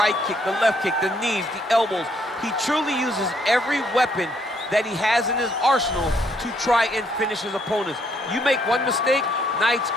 kick, the left kick, the knees, the elbows. He truly uses every weapon that he has in his arsenal to try and finish his opponents. You make one mistake, night's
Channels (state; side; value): normal; both; correlation 0.70